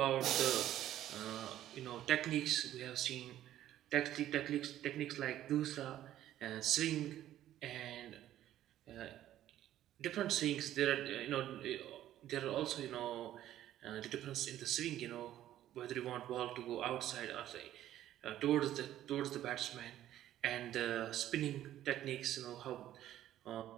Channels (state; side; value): quieter; left; 12.7 dB